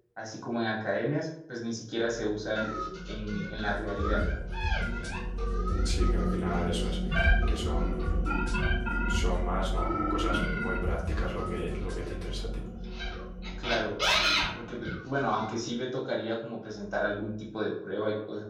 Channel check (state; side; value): identical; both; correlation 1.00